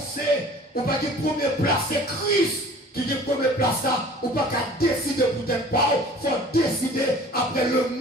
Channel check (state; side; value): normal; both; correlation 0.46